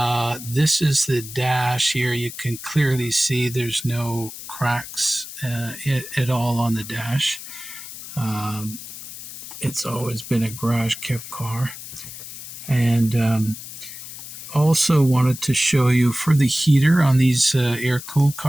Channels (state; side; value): noise; left; hiss, 12 dB below the sound